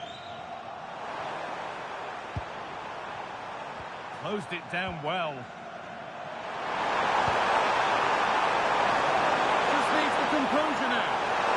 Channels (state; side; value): identical; both; correlation 1.00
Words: Closed it down well. Just needs the composure now.